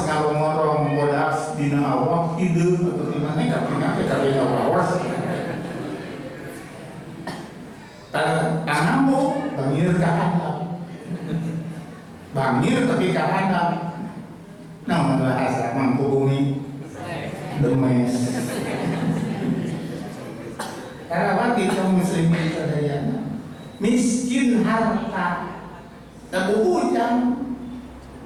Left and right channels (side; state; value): both; identical; correlation 1.00